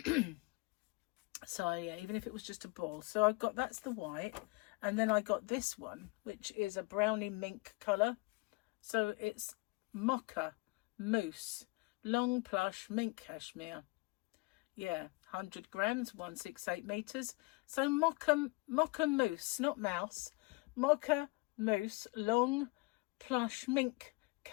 So yeah, even if it was just a ball. So I got, that's the white, and then I got this one, which is a brownie mink colour. So it's mocha mousse long plush mink cashmere. Yeah, 100 grams, 168 meters. So mocha mousse, not mouse. Mocha mousse long plush mink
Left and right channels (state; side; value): quieter; right; 25.9 dB